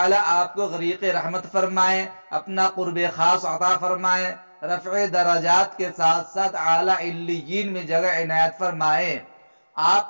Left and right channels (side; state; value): both; inverted; correlation -1.00